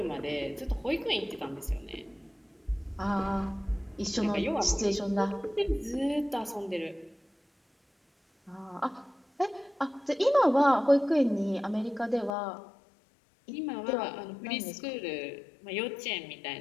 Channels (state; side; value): drops out; right; at 12.4 s